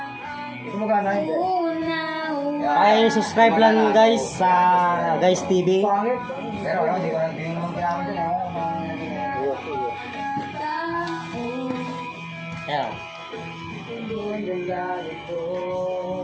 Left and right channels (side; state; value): both; identical; correlation 1.00